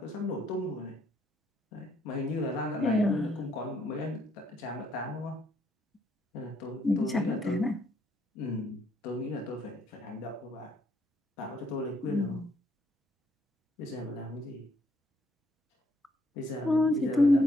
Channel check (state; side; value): normal; both; correlation 0.71